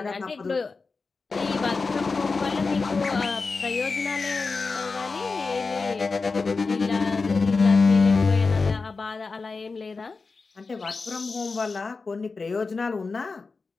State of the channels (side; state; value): right; quieter; 4.2 dB